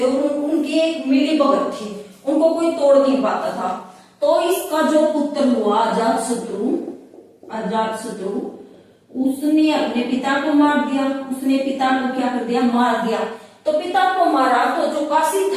और उनकी एक मिली भगत थी, उनको कोई तोड़ नहीं पाता था। तो इसका जो पुत्र हुआ अजातशत्रु, उसने अपने पिता को मार दिया। उसने पिता को क्या कर दिया? मार दिया। तो पिता को मारा तो जो काशी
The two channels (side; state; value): both; identical; correlation 1.00